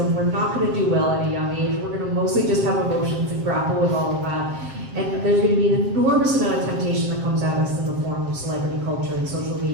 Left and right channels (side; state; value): left; late; 7.6 ms